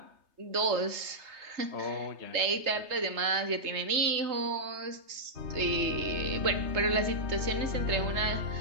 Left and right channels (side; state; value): left; late; 3.3 ms